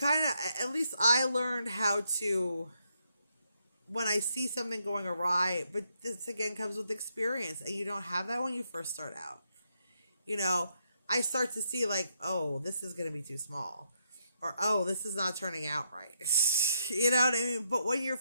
of, at least I learned how to, when I see something going awry, but this again comes with experience, and you don't have that when you first start out. I start to see like, oh, this is going to be too small, or, oh, this is not turning out right. You know what I mean? But when you're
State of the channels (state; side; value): inverted; both; correlation -0.78